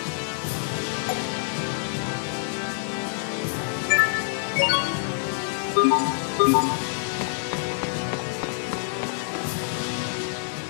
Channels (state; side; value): silent; right; digital silence